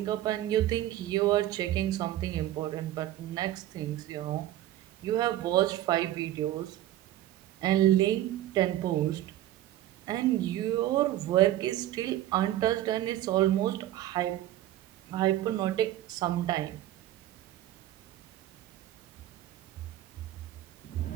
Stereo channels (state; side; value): quieter; left; 13.6 dB